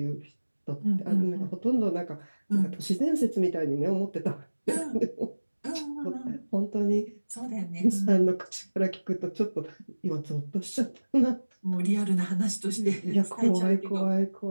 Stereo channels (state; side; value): inverted; both; correlation -1.00